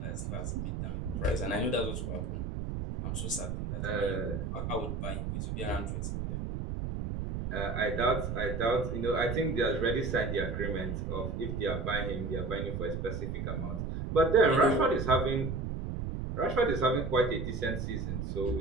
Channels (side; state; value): right; noise; rumble, 3 dB below the sound